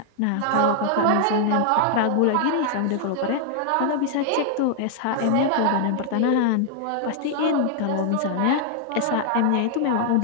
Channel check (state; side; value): different; both; correlation 0.00